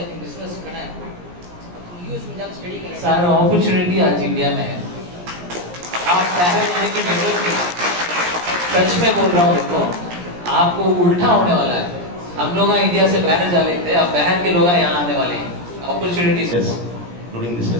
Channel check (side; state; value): left; late; 17 ms